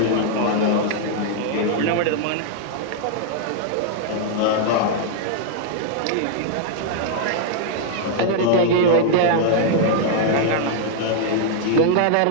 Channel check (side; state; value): both; different; correlation 0.00